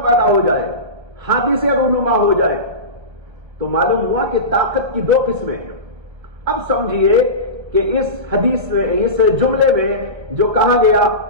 پیدا ہو جائے، حادثے رونما ہو جائے. تو معلوم ہوا کہ طاقت کی دو قسمیں ہیں. اب سمجھیے کہ اس حدیث میں، اس جملے میں جو کہا گیا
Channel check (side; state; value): left; late; 1.3 ms